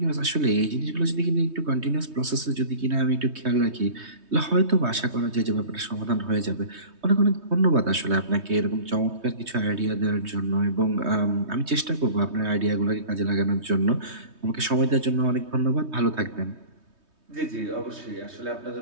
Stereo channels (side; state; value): left; late; 3.2 ms